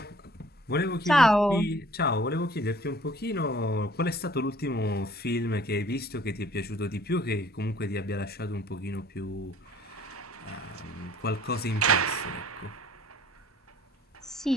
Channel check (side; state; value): both; normal; correlation 0.54